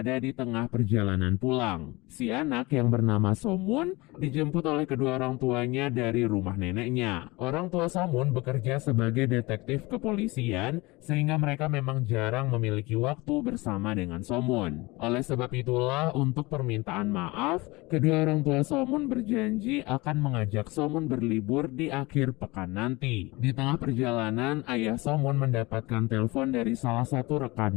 di tengah perjalanan pulang. Si anak yang bernama Somun dijemput oleh kedua orang tuanya dari rumah neneknya. Orang tua Somun bekerja sebagai detektif kepolisian sehingga mereka memang jarang memiliki waktu bersama dengan Somun. Oleh sebab itulah untuk permintaan maaf, kedua orang tua Somun berjanji akan mengajak Somun berlibur di akhir pekan nanti. Di tengah perjalanan, ayah Somun mendapatkan telepon dari salah satu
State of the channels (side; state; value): right; quieter; 23.0 dB